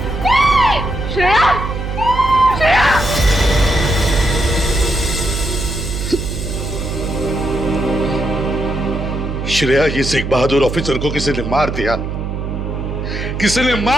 श्रेया, ये सिख बहादुर ऑफिसर को किसी ने मार दिया, किसी ने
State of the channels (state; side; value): noise; right; hum, 4 dB below the sound